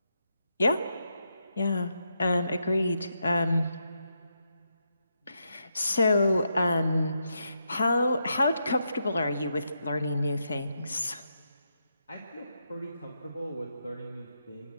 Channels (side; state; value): both; inverted; correlation -0.83